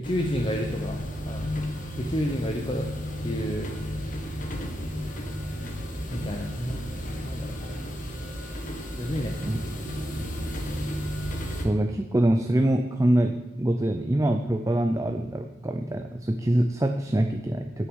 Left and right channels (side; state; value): both; normal; correlation 0.89